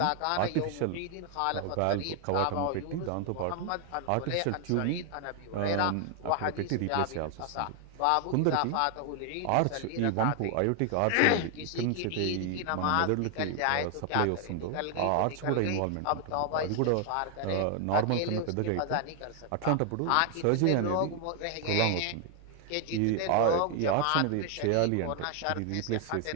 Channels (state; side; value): different; both; correlation 0.00